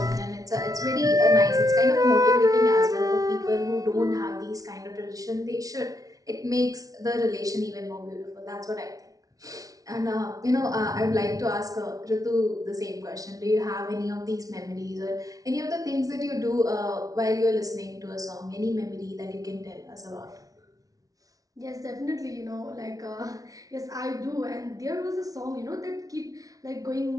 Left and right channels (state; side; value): late; left; 0.18 ms